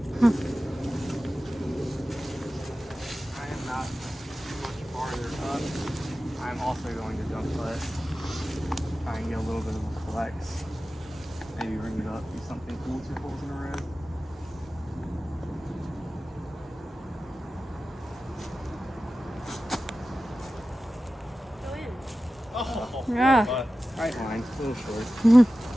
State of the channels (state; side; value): normal; both; correlation 0.95